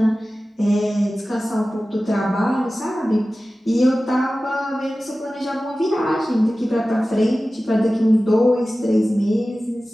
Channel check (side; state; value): both; normal; correlation 0.96